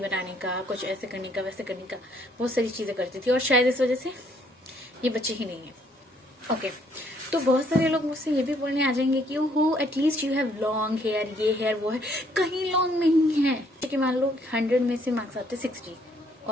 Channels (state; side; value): normal; both; correlation 0.66